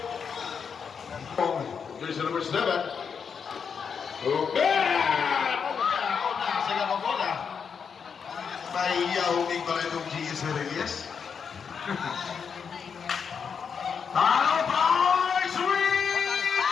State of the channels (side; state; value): right; quieter; 6.5 dB